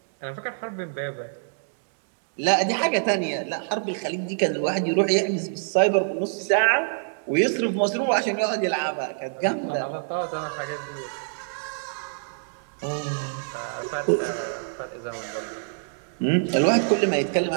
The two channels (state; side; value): silent; left; digital silence